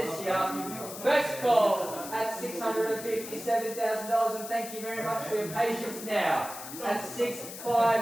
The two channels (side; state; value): left; noise; hiss, 11 dB below the sound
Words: here. First call at $657,000, and thank you very much for your patience now. At